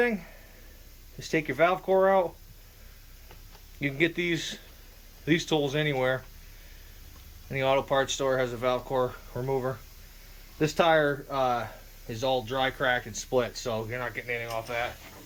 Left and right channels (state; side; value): identical; both; correlation 1.00